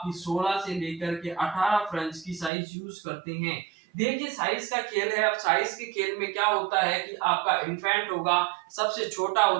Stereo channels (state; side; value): drops out; left; at 2.5 s